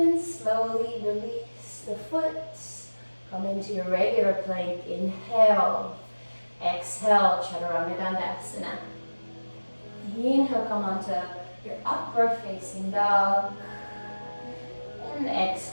slowly release the foot. Come into your regular plank. Inhale. Exhale, Chaturanga Dandasana. Inhale, come onto your upward facing dog. And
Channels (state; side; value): inverted; both; correlation -1.00